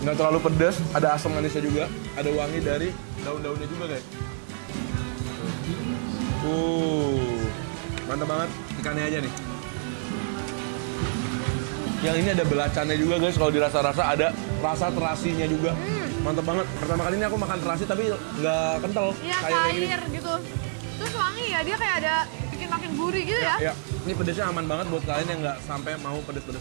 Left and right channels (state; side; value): silent; left; 59 dB below the other